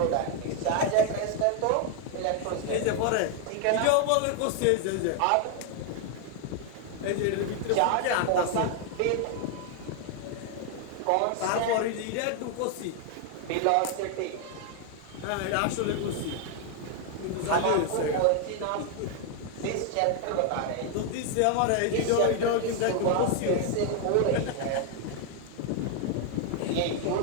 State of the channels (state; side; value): different; both; correlation 0.00